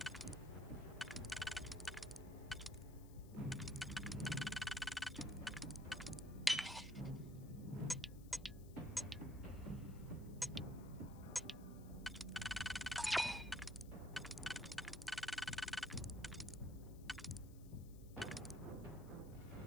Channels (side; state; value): left; noise; hiss, 22 dB below the sound